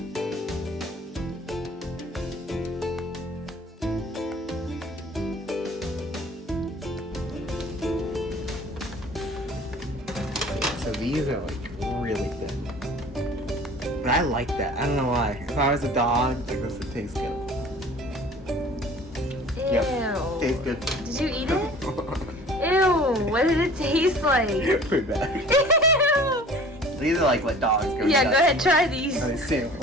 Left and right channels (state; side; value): normal; both; correlation 0.46